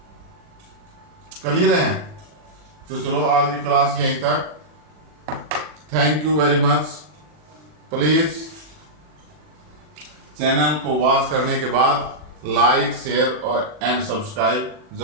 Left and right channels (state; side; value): late; left; 40 ms